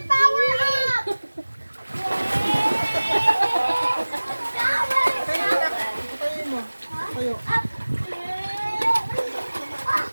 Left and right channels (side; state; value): both; inverted; correlation -1.00